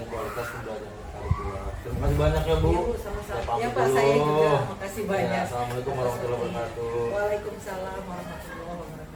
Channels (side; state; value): both; identical; correlation 1.00